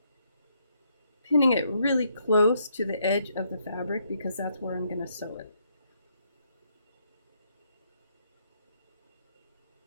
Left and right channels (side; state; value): both; inverted; correlation -0.74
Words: Pinning it really close to the edge of the fabric because that's where I'm going to sew it.